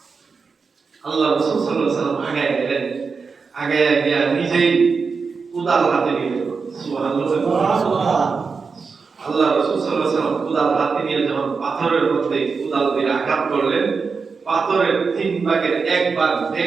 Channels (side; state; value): left; quieter; 5.0 dB